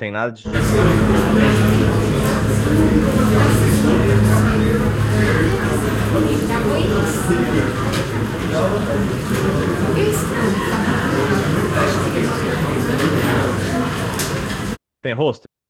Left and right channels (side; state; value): both; identical; correlation 1.00